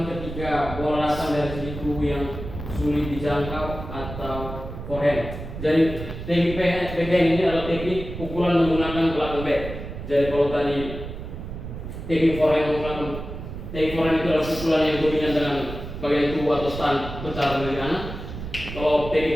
ketika bola datang dari sisi tubuh yang sulit dijangkau atau forehand. Jadi teknik backhand ini adalah teknik pukulan menggunakan belakang bat. Jadi kalau tadi teknik forehand itu adalah pukulan yang dominan dengan bagian tubuh atau stand besar dari kanan. Kalau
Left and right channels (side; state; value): right; noise; rumble, 9 dB below the sound